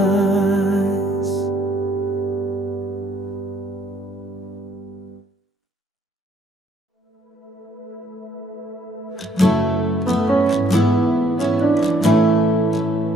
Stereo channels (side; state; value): both; normal; correlation 0.66